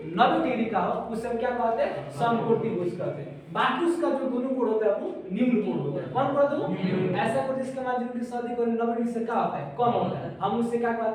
90 डिग्री का हो उसे हम क्या कहते हैं? समकोण त्रिभुज कहते हैं। बाकी उसका जो दोनों कोण होता है वो निम्न कोण होता है। कौन कहते हैं? ऐसा कोण जिसका मान लीजिए शादी को 90 डिग्री से क्या होता है? कम होता है, हम उससे क्या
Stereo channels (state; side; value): identical; both; correlation 1.00